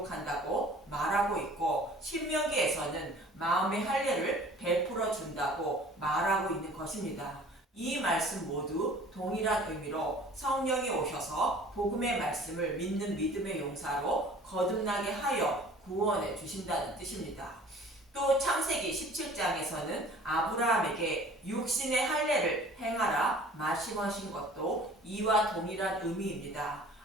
말하고 있고 신명기에서는 마음의 할례를 베풀어 준다고 말하고 있는 것입니다. 이 말씀 모두 동일한 의미로 성령이 오셔서 복음의 말씀을 믿는 믿음의 용사로 거듭나게 하여 구원해 주신다는 뜻입니다. 또 창세기 17장에서는 아브라함에게 육신의 할례를 행하라 말씀하신 것도 이와 동일한 의미입니다.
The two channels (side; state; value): both; normal; correlation 0.49